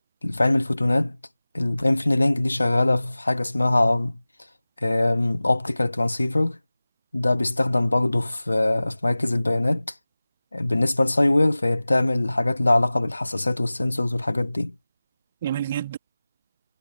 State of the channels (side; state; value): both; inverted; correlation -0.98